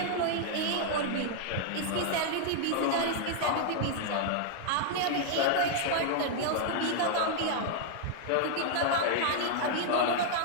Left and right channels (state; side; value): different; both; correlation -0.01